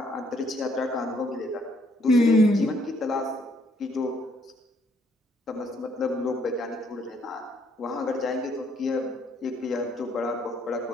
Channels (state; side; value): normal; both; correlation 0.68